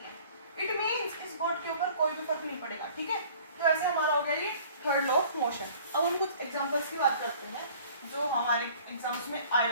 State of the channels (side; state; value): both; inverted; correlation -0.51